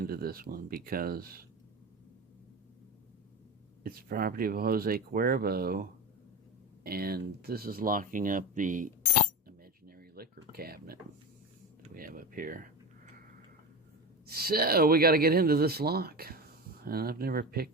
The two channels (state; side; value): normal; both; correlation 0.23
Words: this one because it's property of Jose Cuervo, and this is locking up the imaginary liquor cabinet that we have up here. So we got to get into this lock, and I've never